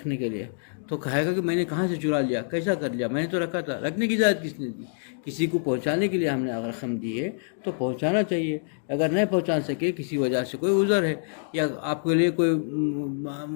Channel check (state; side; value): silent; right; digital silence